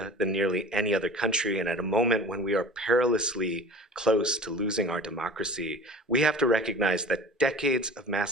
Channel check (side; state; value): both; normal; correlation 0.39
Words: than nearly any other country, and at a moment when we are perilously close to losing our democracy, we have to recognize that decades of